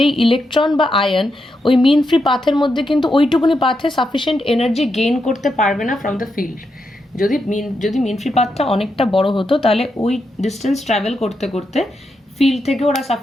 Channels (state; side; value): normal; both; correlation 0.84